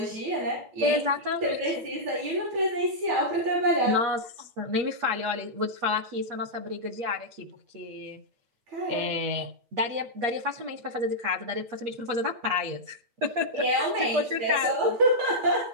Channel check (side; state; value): left; late; 8.4 ms